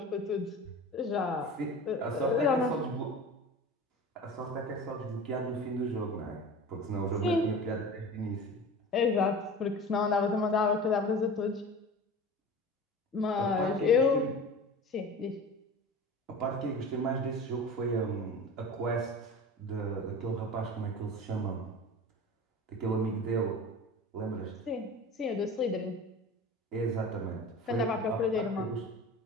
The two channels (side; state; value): both; normal; correlation 0.35